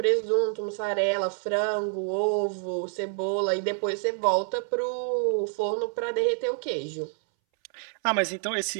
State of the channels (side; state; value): left; silent; 60 dB below the other